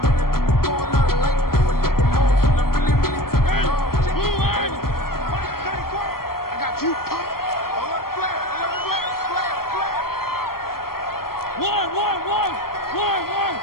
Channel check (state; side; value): late; right; 0.93 ms